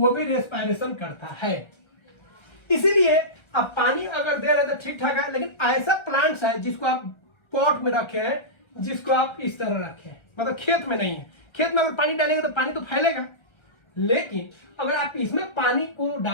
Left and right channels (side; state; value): right; late; 1.3 ms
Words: भी रेस्पायरेशन करता है। इसीलिए अब पानी अगर दे रहे तो ठीक ठाक है, लेकिन ऐसा प्लांट्स है जिसको आप पॉट में रखे हैं, जिसको आप इस तरह रखे हैं, मतलब खेत में नहीं है। खेत में अगर पानी डालेंगे तो पानी तो फैलेगा, लेकिन अगर आप इसमें पानी को